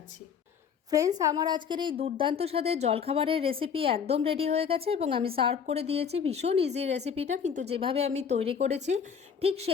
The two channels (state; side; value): quieter; right; 6.9 dB